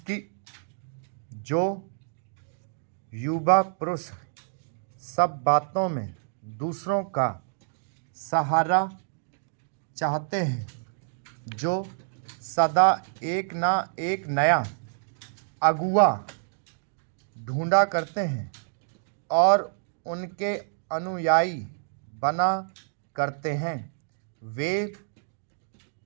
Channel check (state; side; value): silent; left; digital silence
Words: कि जो युवा पुरुष सब बातों में दूसरों का सहारा चाहते हैं, जो सदा एक ना एक नया अगुआ ढूंढा करते हैं और उनके अनुयायी बना करते हैं, वे